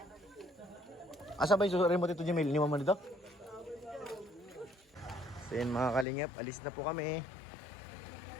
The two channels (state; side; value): drops out; right; at 6.1 s